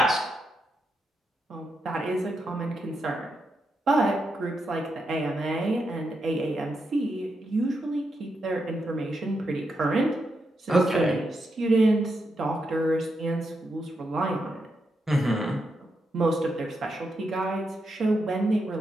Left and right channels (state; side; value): normal; both; correlation 0.84